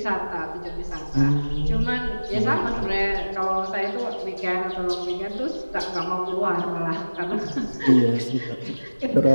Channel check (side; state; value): both; inverted; correlation -1.00